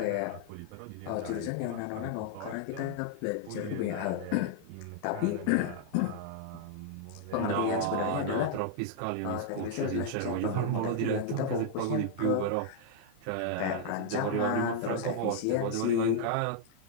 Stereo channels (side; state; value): both; different; correlation -0.01